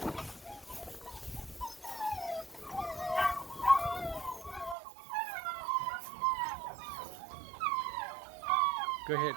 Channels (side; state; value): left; drops out; at 4.8 s